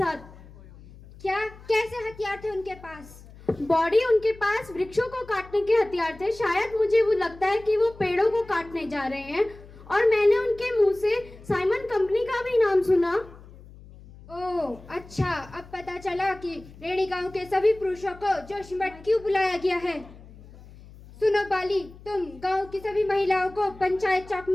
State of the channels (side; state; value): left; noise; hum, 20 dB below the sound